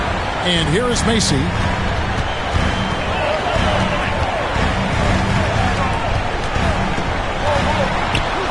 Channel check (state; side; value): identical; both; correlation 1.00